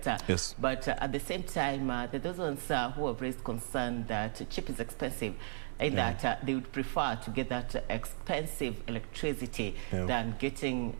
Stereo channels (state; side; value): silent; left; 54 dB below the other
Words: Yes. But at the same time, there are those ones who have raised concern that cheap is expensive, and that they would prefer to get that expensive electricity than getting